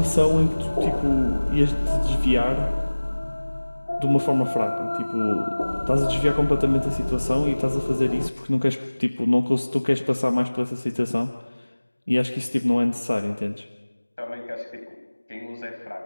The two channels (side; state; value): both; inverted; correlation -1.00